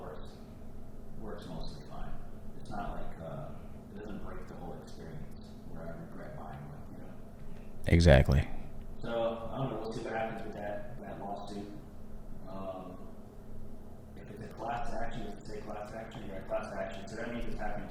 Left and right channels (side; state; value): both; identical; correlation 1.00